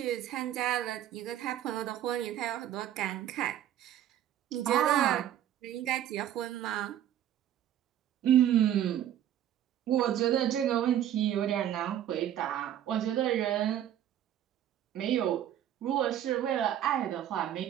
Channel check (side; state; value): left; quieter; 11.2 dB